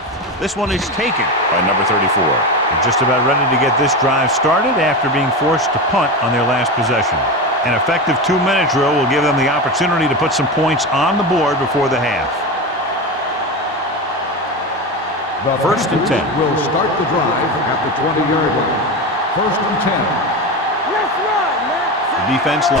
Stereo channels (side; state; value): both; normal; correlation 0.21